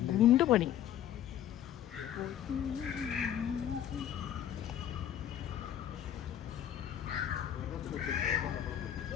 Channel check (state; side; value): quieter; right; 10.7 dB